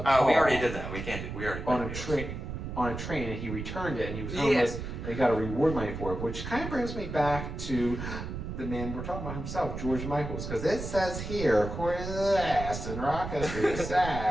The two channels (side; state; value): right; noise; rumble, 7 dB below the sound